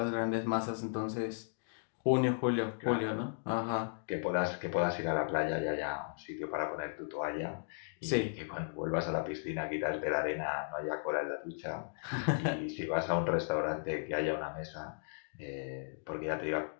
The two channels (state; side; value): silent; right; digital silence